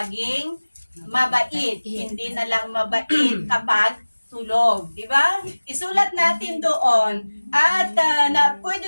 mabait. Hindi na lang mabait kapag tulog, di ba? Isulat natin doon at na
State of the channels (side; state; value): both; inverted; correlation -1.00